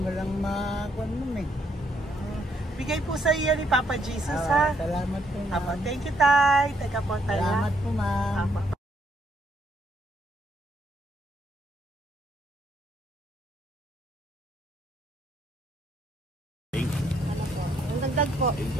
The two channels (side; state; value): both; normal; correlation 0.72